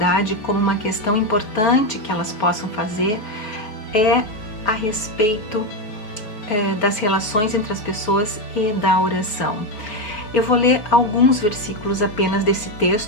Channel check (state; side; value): late; right; 4.7 ms